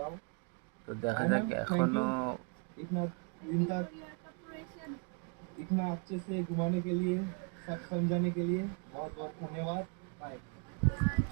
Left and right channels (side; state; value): left; quieter; 37.1 dB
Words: তো দেখা Anna, যাক thank এখনো you. इतना दिन तक इतना अच्छे से घुमाने के लिए, सब समझाने के लिए बहुत बहुत धन्यवाद। बाय।